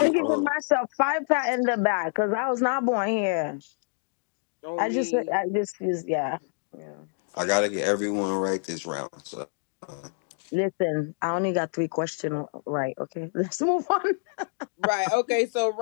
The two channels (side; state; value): right; silent; 60 dB below the other